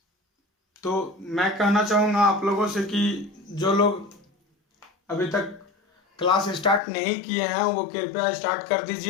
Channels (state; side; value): drops out; right; at 6.8 s